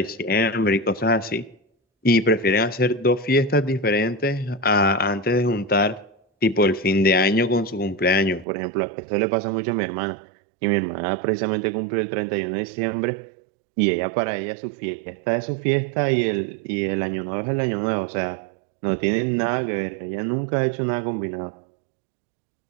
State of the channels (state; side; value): drops out; left; at 8.5 s